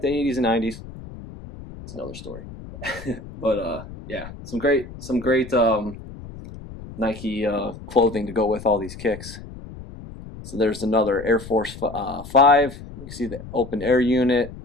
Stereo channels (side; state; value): left; noise; rumble, 14 dB below the sound